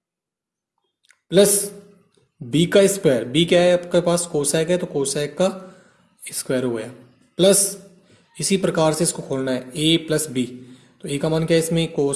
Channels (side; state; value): both; identical; correlation 1.00